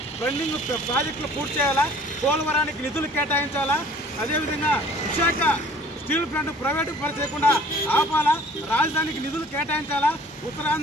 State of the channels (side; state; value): both; normal; correlation 0.52